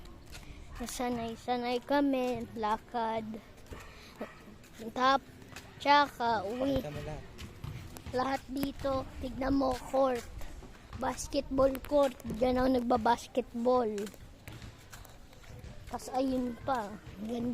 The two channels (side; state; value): both; identical; correlation 1.00